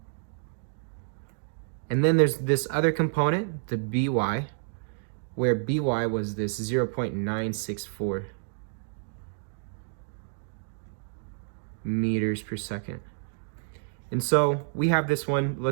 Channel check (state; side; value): silent; left; digital silence